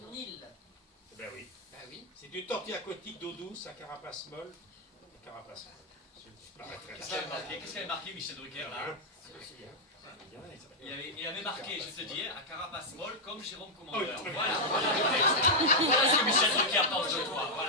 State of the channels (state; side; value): normal; both; correlation -0.03